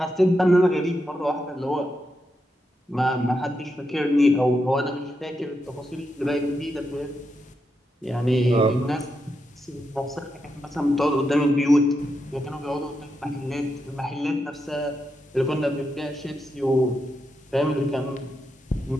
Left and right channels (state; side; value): normal; both; correlation 0.85